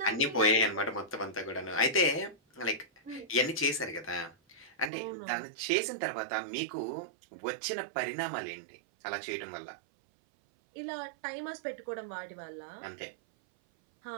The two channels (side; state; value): left; drops out; at 4.9 s